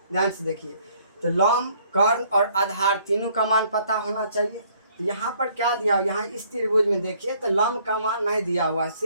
ध्यान से देखिए, तो लंब, कर्ण और आधार तीनों का मान पता होना चाहिए। तो यहाँ पर क्या दिया, यहाँ इस त्रिभुज में देखिए तो लंब का मान नहीं दिया हुआ है,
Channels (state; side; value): inverted; both; correlation -0.62